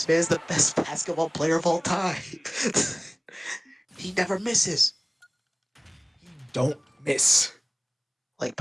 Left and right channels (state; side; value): identical; both; correlation 1.00